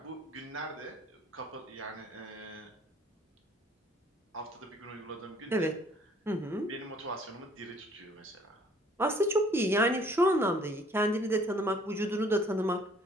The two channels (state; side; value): normal; both; correlation 0.58